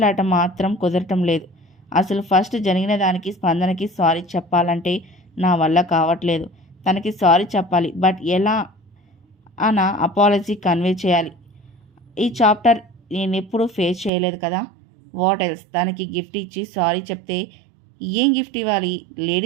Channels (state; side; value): drops out; left; at 14.1 s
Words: మాత్రం కుదరటం లేదు. అసలు ఫస్ట్ జరిగిన దానికి స్పందనకి సారీ చెప్పాలంటే నా వల్ల కావట్లేదు. తనకి సారీ చెప్పాలి, బట్ ఎలా అన్న అపాలజీ కన్వే చేయాలి. ఈ చాప్టర్ నేను ఎప్పుడూ ఫేస్ చేయలేదు కదా. What else? తనకి గిఫ్ట్ ఇచ్చి సారీ చెప్తే ఏం గిఫ్ట్ ఇవ్వాలి?